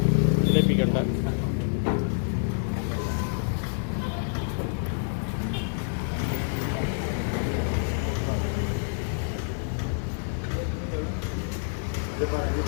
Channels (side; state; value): right; silent; 60 dB below the other